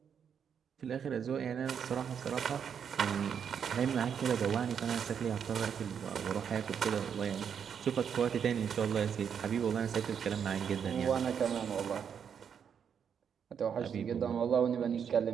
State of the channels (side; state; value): left; quieter; 7.6 dB